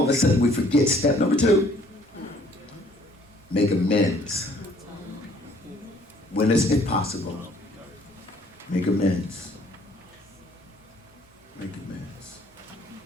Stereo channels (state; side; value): normal; both; correlation 0.60